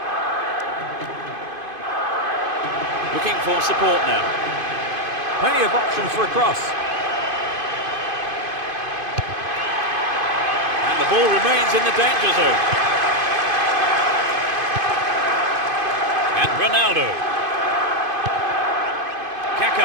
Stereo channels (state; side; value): late; left; 2.5 ms